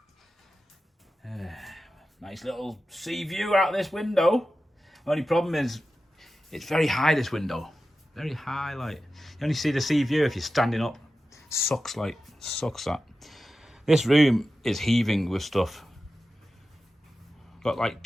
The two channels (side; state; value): both; normal; correlation 0.93